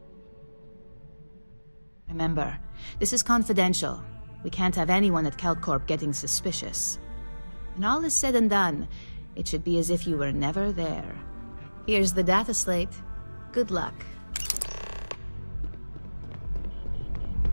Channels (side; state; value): both; inverted; correlation -1.00